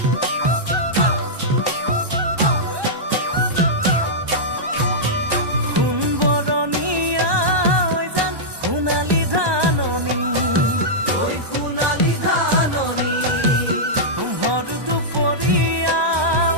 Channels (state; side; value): late; left; 1.2 ms